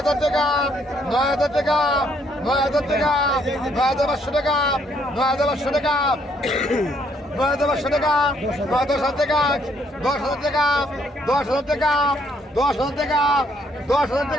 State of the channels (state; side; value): normal; both; correlation 0.69